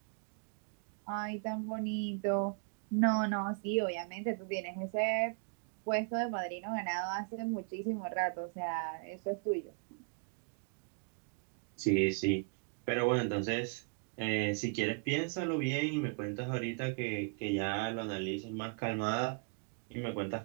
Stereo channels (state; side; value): quieter; left; 37.6 dB